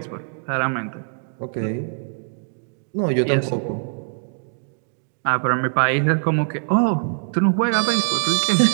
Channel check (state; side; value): silent; left; 64 dB below the other